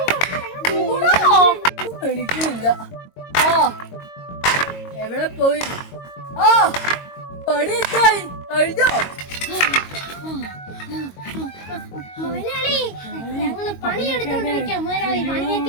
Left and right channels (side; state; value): right; late; 22 ms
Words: എനിക്കില്ല. ആ എവിടെ പോയി? ആ പണി എത്തായി കഴിഞ്ഞോ? മുതലാളി, ഞങ്ങള് പണിയെടുത്തോണ്ടിരിക്കാം മുതലാളി.